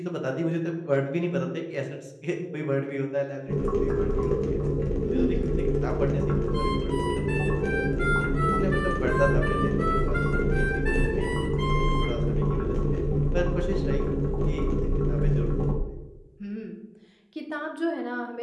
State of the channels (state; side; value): identical; both; correlation 1.00